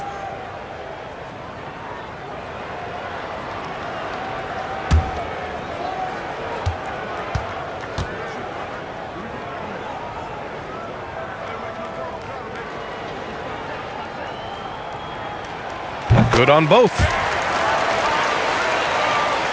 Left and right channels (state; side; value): identical; both; correlation 1.00